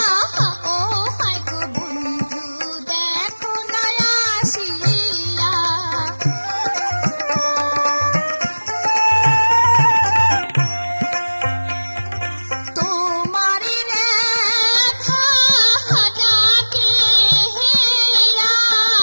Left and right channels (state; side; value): inverted; both; correlation -1.00